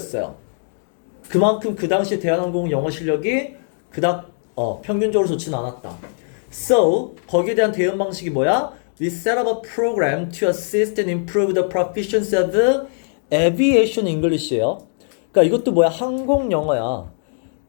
그만큼 그 당시 대한항공 영어 실력이 그닥 평균적으로 좋지는 않았다. So, 거기에 대한 대응 방식이 뭐야? We set up a program to assist and improve the proficiency of aviation English예요. 그러니까 이것도 뭐야? 항공 영어야.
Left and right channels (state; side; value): silent; right; digital silence